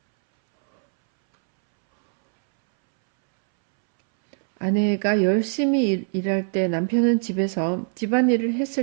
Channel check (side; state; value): left; silent; 64 dB below the other